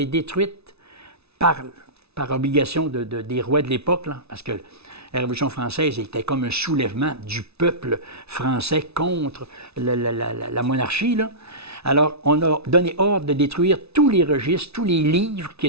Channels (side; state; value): left; late; 0.80 ms